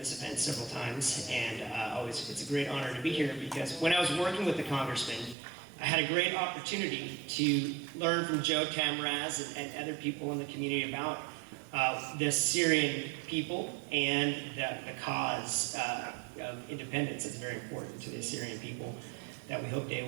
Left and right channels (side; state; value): left; drops out; at 5.4 s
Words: event several times, and it's a great honor to be here because when I was working with the congressman, I had a great opportunity to learn from Joe Tamraz and other people in the community about the Assyrian people and the cause of independence that's very important to the Assyrian people that we hope they